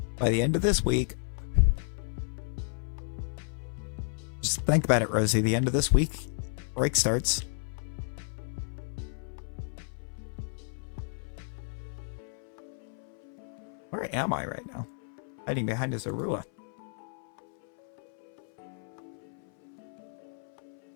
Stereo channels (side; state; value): right; silent; 56 dB below the other